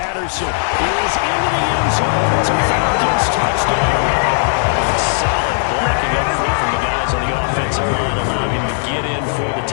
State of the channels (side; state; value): right; silent; 65 dB below the other